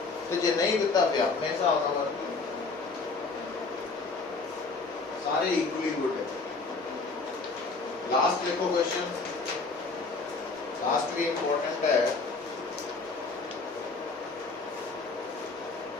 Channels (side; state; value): right; quieter; 4.0 dB